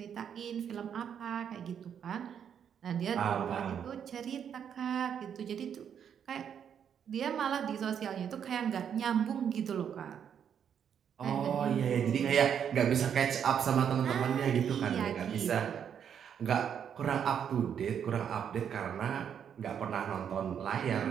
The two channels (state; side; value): quieter; left; 8.3 dB